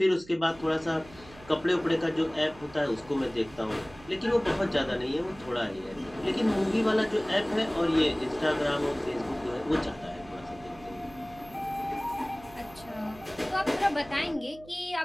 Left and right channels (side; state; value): right; noise; hum, 21 dB below the sound